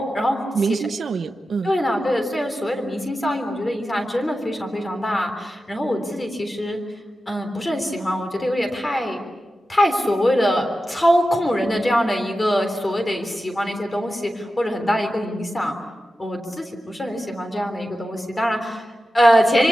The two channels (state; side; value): normal; both; correlation 0.92